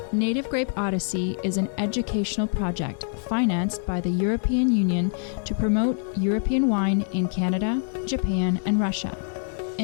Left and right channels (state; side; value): silent; right; 60 dB below the other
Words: Native Grape Odyssey is an educational project financed by the European Union to promote European wine in Canada, Japan, and Russia.